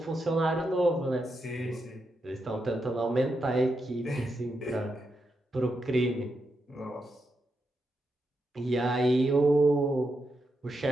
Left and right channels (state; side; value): normal; both; correlation 0.84